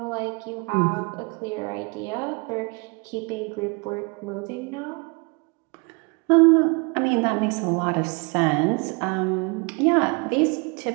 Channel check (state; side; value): quieter; left; 31.1 dB